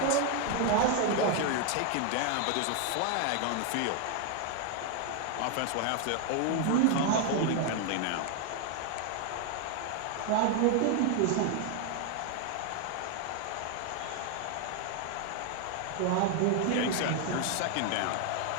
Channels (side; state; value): both; different; correlation 0.01